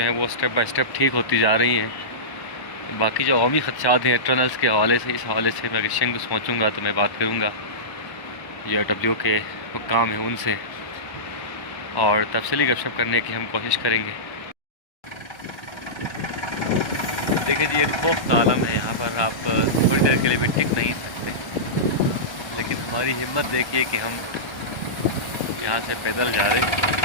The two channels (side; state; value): right; late; 1.1 ms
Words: वो स्टेप बाय स्टेप ठीक होती जा रही हैं। बाकी जो अवामी खदशात हैं टनल्स के हवाले से, इस हवाले से मैं अगर शंग पहुँचूँगा तो मैं बात करूँगा जो डब्ल्यू के हुक्काम हैं उनसे, और तफसीली गपशप करने की हम कोशिश करेंगे। देखिए जी, एक खौफ का आलम है यहाँ पर, आप थोड़ी देर के लिए भी टिक नहीं सकते। लेकिन हमारी हिम्मत देखिए कि हम यहाँ से पैदल जा रहे हैं।